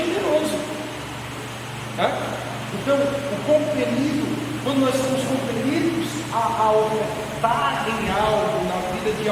Então, o compelido, quando nós somos compelidos a ofertar em algo na vida de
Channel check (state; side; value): identical; both; correlation 1.00